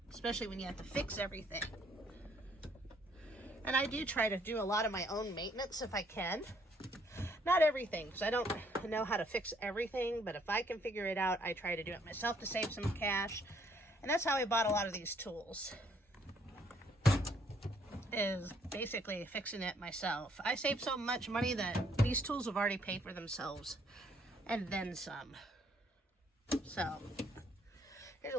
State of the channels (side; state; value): both; normal; correlation 0.66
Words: Especially when you have to fix everything. And I do try to do a lot of my own maintenance if I can. Not everything, because I don't know how to fix everything, but if I can figure it out, I try to do it myself to save some cash. And that's how I bought a lot of these tools, is basically fixing it myself. I saved so much money that these tools have already paid for themselves, and then some. So, here's a